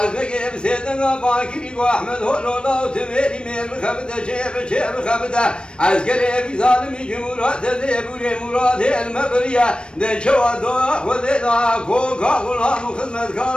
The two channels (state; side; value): late; right; 0.055 ms